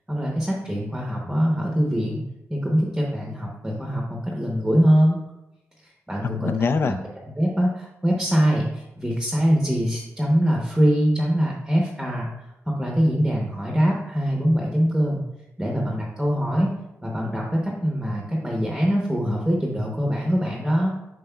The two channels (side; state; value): both; normal; correlation 0.95